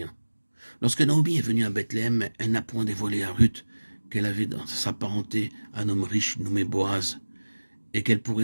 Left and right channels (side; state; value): both; inverted; correlation -1.00